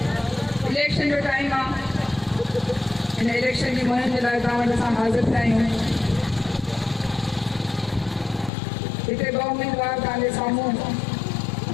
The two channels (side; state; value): right; drops out; at 8.5 s